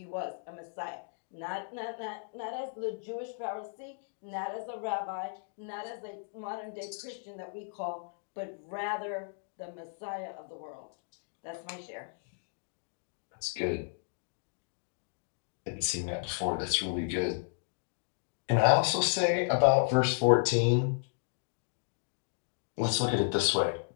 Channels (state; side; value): silent; right; digital silence